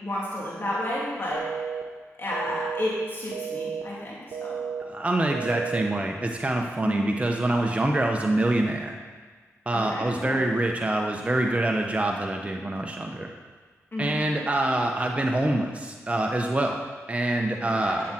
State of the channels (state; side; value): normal; both; correlation 0.87